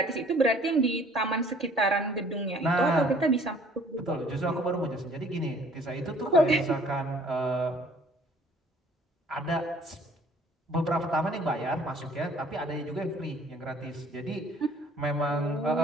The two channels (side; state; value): both; normal; correlation 0.55